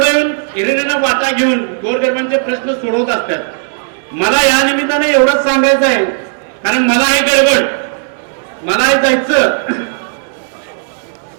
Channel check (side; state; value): left; silent; digital silence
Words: येऊन हिरिरीनं वाटा घेऊन गोरगरिबांचे प्रश्न सोडवत असतात. मला या निमित्ताने एवढंच सांगायचं आहे, कारण मला आहे गडबड, मला आहे जायचं.